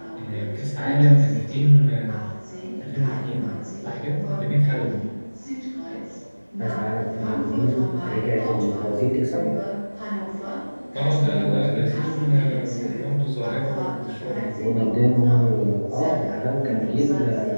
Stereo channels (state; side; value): inverted; both; correlation -1.00